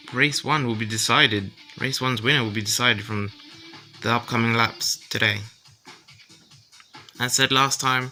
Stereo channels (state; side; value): identical; both; correlation 1.00